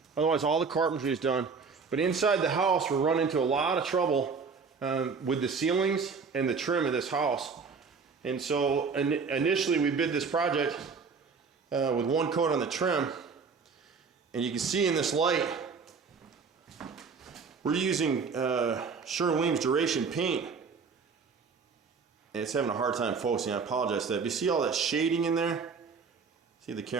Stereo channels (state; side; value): quieter; left; 5.2 dB